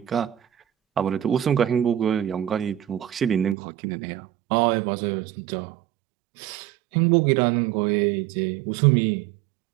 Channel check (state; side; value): drops out; left; at 3.6 s